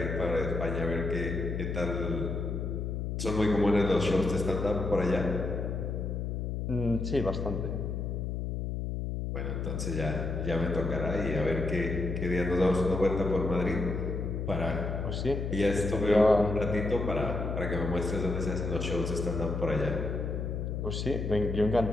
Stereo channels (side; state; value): left; noise; hum, 2 dB below the sound